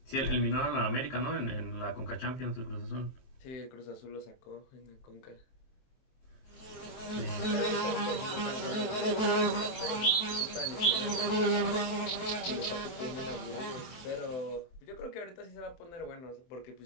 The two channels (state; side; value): late; right; 23 ms